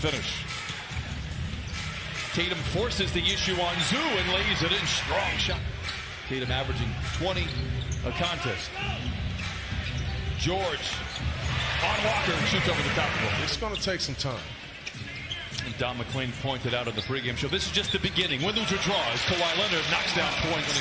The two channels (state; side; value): identical; both; correlation 1.00